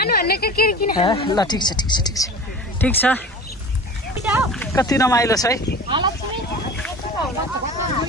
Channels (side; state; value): both; normal; correlation 0.37